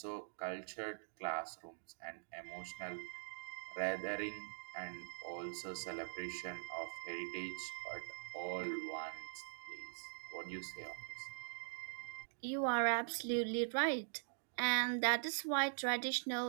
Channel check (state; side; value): silent; left; digital silence